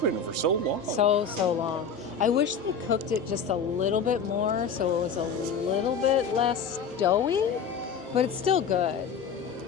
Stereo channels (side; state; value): right; quieter; 5.7 dB